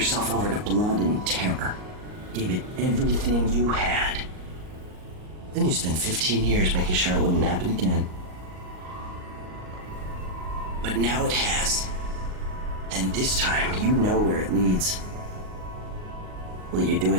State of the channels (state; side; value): late; left; 38 ms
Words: over to blood and terror. Gave it everything you had. Then you spent 15 years making sure it wouldn't happen again. But now it has. And this time, you know where it leads. Will you do